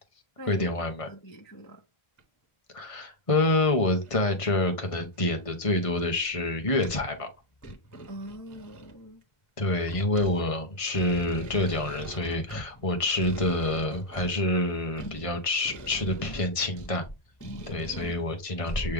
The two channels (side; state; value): right; late; 1.5 ms